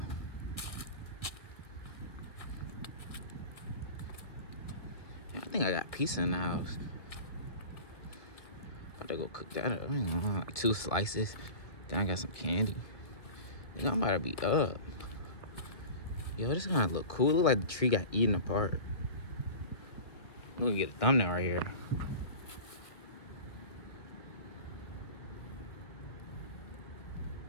I think I got pizza in the house. About to go cook that up. I ain't gonna lie. Like 2 slices. Then I got some candy. I think I'm about to be up. Yo, this kind of look cool. Look like the tree got eaten apart. I'm gonna get a thumbnail right here.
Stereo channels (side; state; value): right; late; 1.7 ms